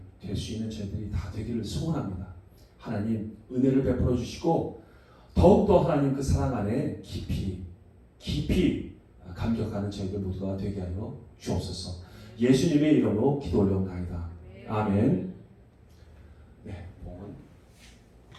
될 수 있는 저희들이 다 되기를 소원합니다. 하나님 은혜를 베풀어 주시고 더욱더 하나님 그 사랑 안에 깊이 감격하는 저희들 모두가 되게 하여 주옵소서. 예수님의 이름으로 기도 올려옵나이다. 아멘. 네, 봉헌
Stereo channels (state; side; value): identical; both; correlation 1.00